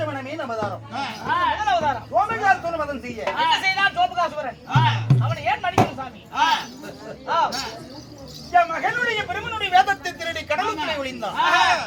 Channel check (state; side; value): identical; both; correlation 1.00